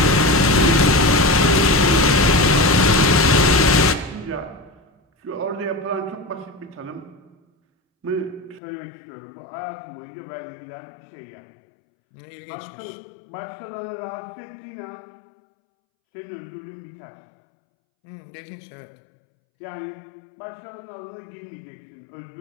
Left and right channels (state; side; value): drops out; right; at 8.6 s